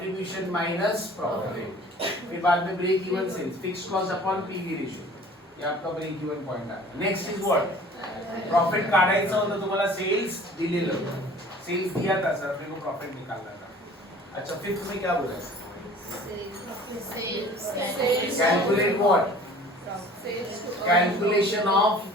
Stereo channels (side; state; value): both; normal; correlation 0.48